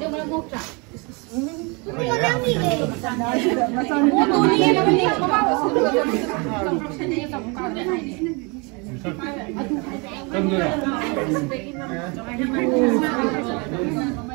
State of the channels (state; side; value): quieter; left; 30.5 dB